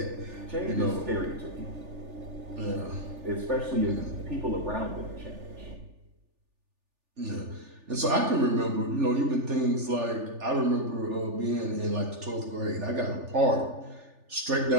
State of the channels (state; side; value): late; left; 3.4 ms